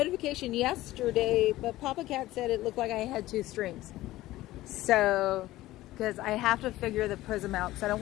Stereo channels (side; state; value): right; quieter; 16.4 dB